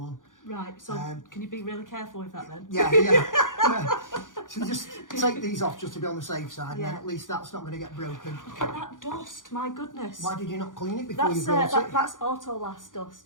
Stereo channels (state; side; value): late; right; 0.88 ms